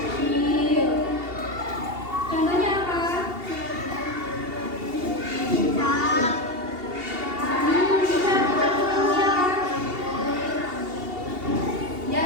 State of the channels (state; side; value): late; left; 2.8 ms